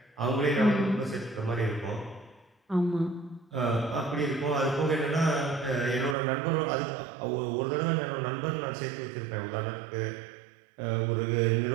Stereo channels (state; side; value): drops out; left; at 6.2 s